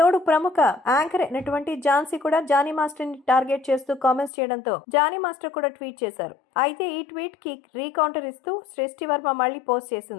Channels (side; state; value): right; drops out; at 4.3 s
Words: ప్రముఖ యాంకర్ అయినటువంటి ఝాన్సీ కూడా జానీ మాస్టర్ ని టార్గెట్ చేస్తూ కామెంట్స్ చేయడంతో జానీ మాస్టర్ కూడా ట్వీట్ చేశారు. అయితే ఈ ట్వీట్ కి రీకౌంటర్ ఇస్తూ సృష్టి వర్మ మళ్ళీ పోస్ట్